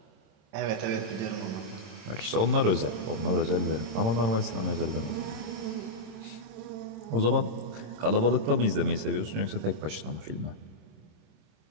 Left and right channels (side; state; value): left; late; 26 ms